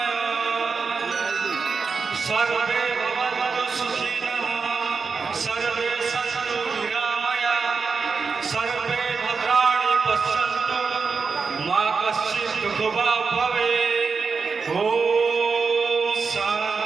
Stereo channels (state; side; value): quieter; left; 5.0 dB